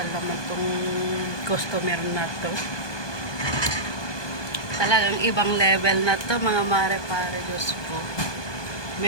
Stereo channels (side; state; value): right; late; 1.2 ms